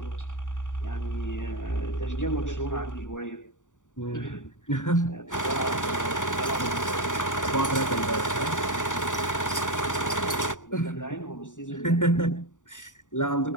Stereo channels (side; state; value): right; late; 0.86 ms